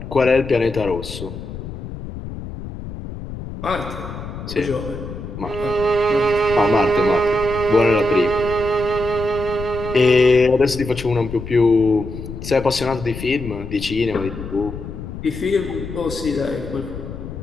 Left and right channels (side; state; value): left; noise; rumble, 10 dB below the sound